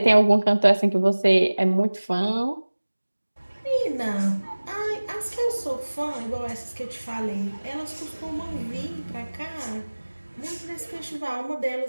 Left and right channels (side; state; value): both; inverted; correlation -1.00